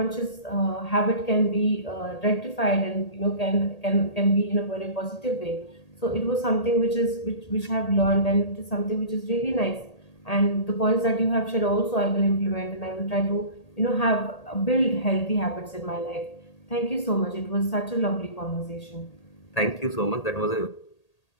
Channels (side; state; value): right; late; 1.8 ms